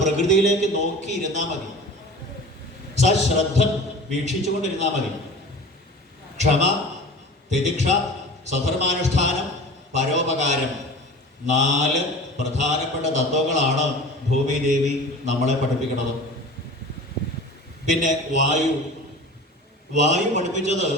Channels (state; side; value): normal; both; correlation 0.38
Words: പ്രകൃതിയിലേക്ക് നോക്കിയിരുന്നാൽ മതി, സശ്രദ്ധം വീക്ഷിച്ചുകൊണ്ടിരുന്നാൽ മതി. ക്ഷമ, തിതിക്ഷ, സ്വധർമാനുഷ്ഠാനം, പരോപകാരം, 4 പ്രധാനപ്പെട്ട തത്വങ്ങളാണ് ഭൂമിദേവി നമ്മളെ പഠിപ്പിക്കുന്നത്. പിന്നെ വായു പഠിപ്പിച്ചത്,